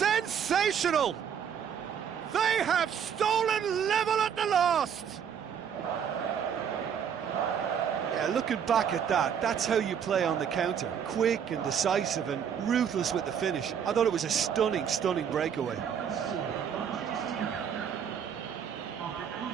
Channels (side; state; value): left; quieter; 8.0 dB